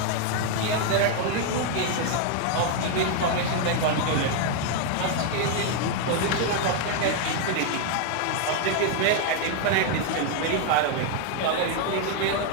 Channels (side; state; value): both; different; correlation 0.00